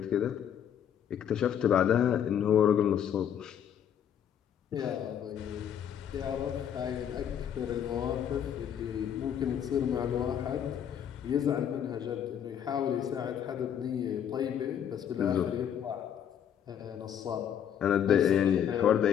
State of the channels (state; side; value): quieter; right; 9.1 dB